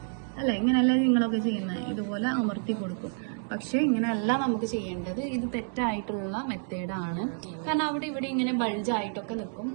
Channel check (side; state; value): left; silent; 59 dB below the other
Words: അല്ലേ? ഇങ്ങനെയല്ലേ നിങ്ങളൊക്കെ ചെയ്യുന്നത്? ഇതുപോലെ അമർത്തി കൊടുക്കും. പക്ഷെ ഇങ്ങനെയല്ല നമുക്ക് ചെയ്യേണ്ടത്. ഇത് തെറ്റായിട്ടുള്ള മെത്തേഡാണ്. കാരണം അവിടെ ഇവിടെ ഇങ്ങനെ ബൾജായിട്ടൊക്കെ നിൽക്കും,